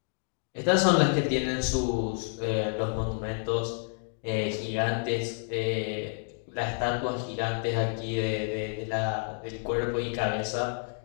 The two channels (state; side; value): silent; right; 58 dB below the other